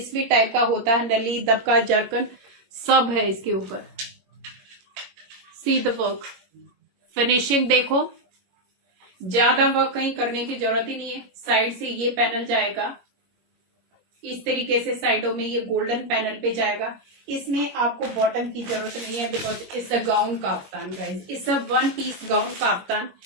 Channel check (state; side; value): late; left; 21 ms